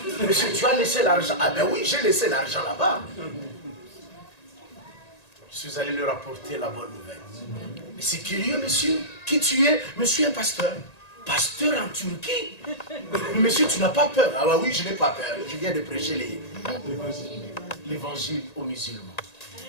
Monsieur, tu as laissé l'argent? Ah ben oui, j'ai laissé l'argent là-bas. Je suis allé leur apporter la bonne nouvelle. Mais c'est curieux, monsieur. Qui tu es? Monsieur, un pasteur. Pasteur en Turquie? Monsieur, tu n'as pas peur? Ah bah oui, je n'ai pas peur. Je viens de prêcher l'évangile aux musulmans.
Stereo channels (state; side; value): late; right; 1.9 ms